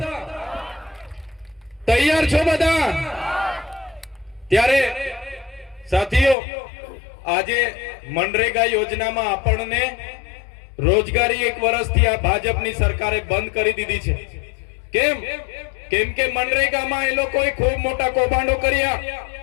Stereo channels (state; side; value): drops out; right; at 6.4 s